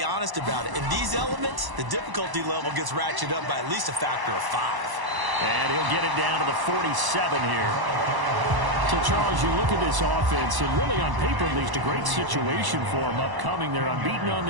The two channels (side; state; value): left; late; 1.0 ms